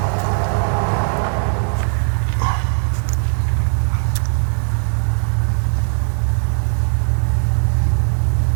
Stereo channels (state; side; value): silent; left; digital silence